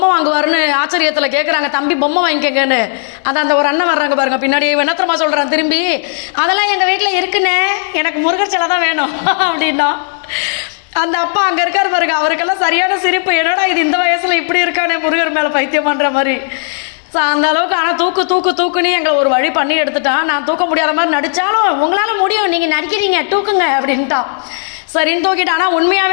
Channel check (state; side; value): silent; right; 71 dB below the other